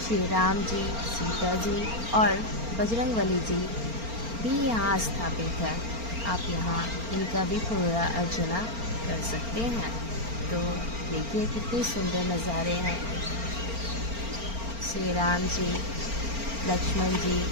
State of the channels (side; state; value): left; late; 4.4 ms